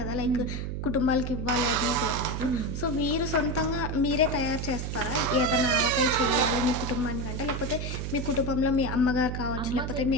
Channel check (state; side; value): noise; right; hum, 4 dB below the sound